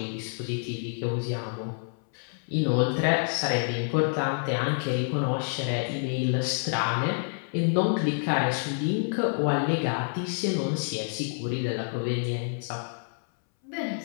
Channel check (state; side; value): silent; right; 59 dB below the other